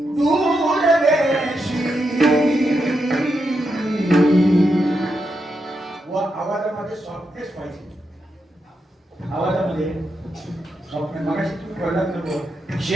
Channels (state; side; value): normal; both; correlation 0.84